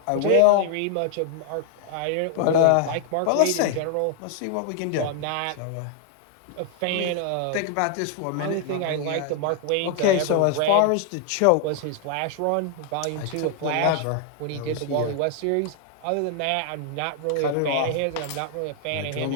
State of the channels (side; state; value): both; different; correlation 0.00